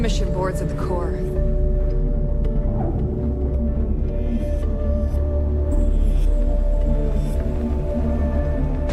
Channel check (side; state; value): both; identical; correlation 1.00